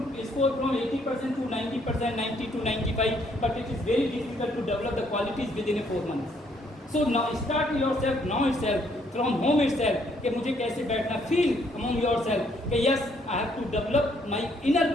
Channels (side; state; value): both; normal; correlation 0.68